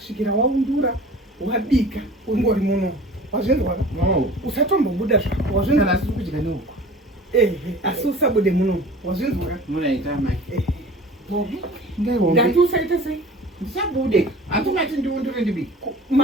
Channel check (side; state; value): both; normal; correlation 0.42